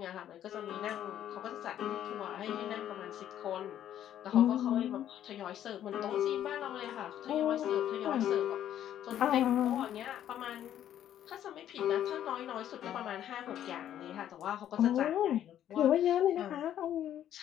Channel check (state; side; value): quieter; right; 11.0 dB